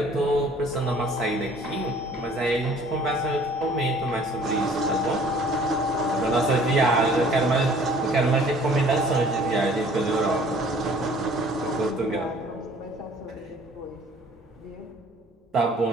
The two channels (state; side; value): normal; both; correlation 0.54